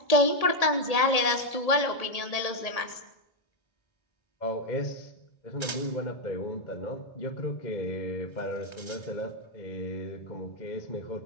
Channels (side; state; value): right; late; 1.8 ms